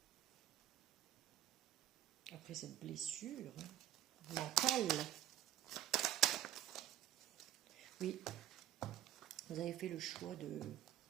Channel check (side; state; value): left; quieter; 12.0 dB